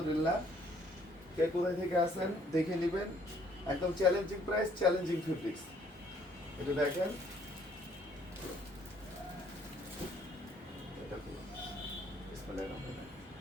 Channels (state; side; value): normal; both; correlation 0.63